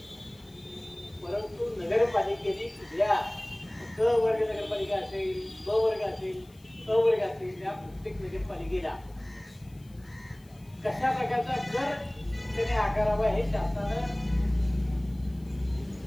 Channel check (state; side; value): noise; left; hiss, 29 dB below the sound